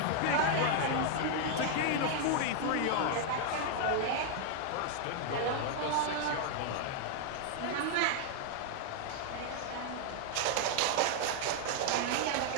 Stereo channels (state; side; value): different; both; correlation 0.00